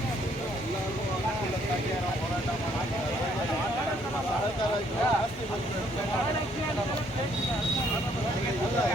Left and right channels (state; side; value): normal; both; correlation 0.67